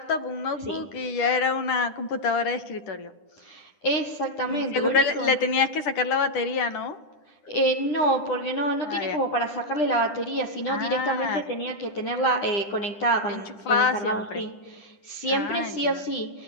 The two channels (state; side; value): late; right; 10 ms